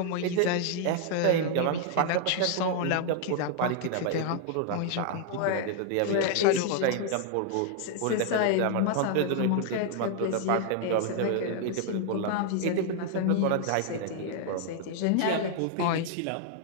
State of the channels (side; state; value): both; different; correlation 0.00